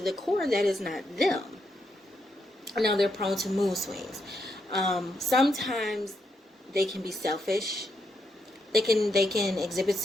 core, that is not them. Now they're prone to mood swings. Sometimes they can be selfish. They can exhibit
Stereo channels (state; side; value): normal; both; correlation 0.80